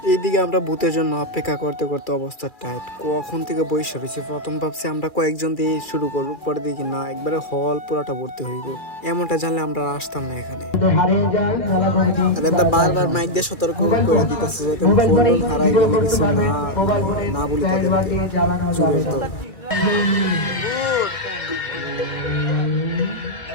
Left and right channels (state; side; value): late; right; 2.4 ms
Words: এইদিকে আমরা ভূতের জন্য অপেক্ষা করতে করতে অবস্থা টাইট, কখন থেকে বসে রয়েছে। প্রথম ভাবছি আমরা কয়েকজন দিয়ে শুরু করবো, পরে দেখি না একবারে হল পুরাটা ভর্তি হইব। এমনটা জানলে আমরা আর আসতাম না এখানে। আর এটা বারবার মাইক দিয়ে সতর্ক করে দিতেছে যাতে ফোন টোন হারাই গেলে কিছু না বলি তাদেরকে চুরের দল।